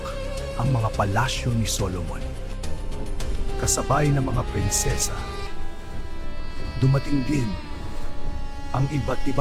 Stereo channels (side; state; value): both; identical; correlation 1.00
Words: ang mga palasyo ni Solomon. Kasabay ng mga prinsesa, dumating din ang iba't